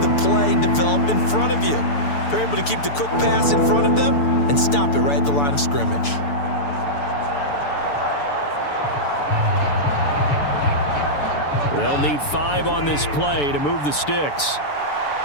play develop in front of you. They're able to keep the quick pass in front of them and stop it right at the line of scrimmage. They'll need 5 on this play to move the sticks.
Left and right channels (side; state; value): right; late; 6.9 ms